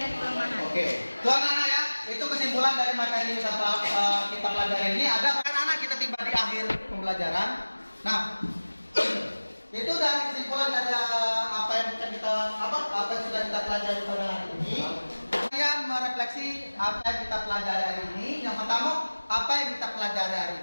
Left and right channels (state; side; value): inverted; both; correlation -1.00